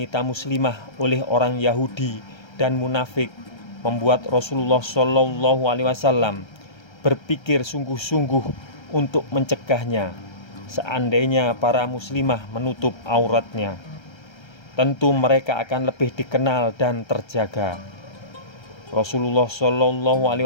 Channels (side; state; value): right; late; 1.3 ms